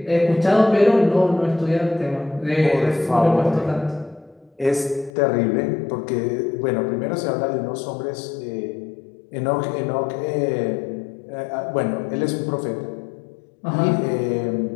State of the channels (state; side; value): drops out; right; at 5.1 s